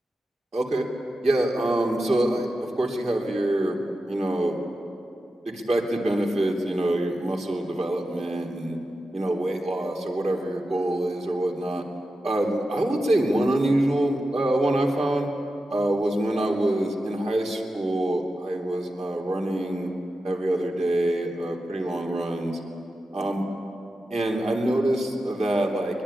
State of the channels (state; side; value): normal; both; correlation 0.91